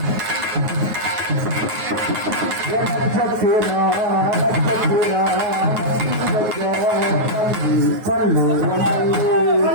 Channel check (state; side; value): late; left; 9.4 ms